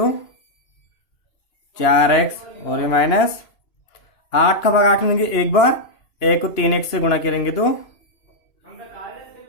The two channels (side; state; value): right; late; 2.9 ms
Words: 4x, और ये माइनस 8 का भाग 8 में देंगे 1 बार, 1 को 3x से गुणा करेंगे तो